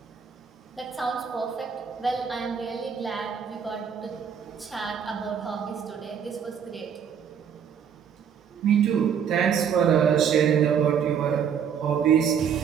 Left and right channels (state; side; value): quieter; left; 7.7 dB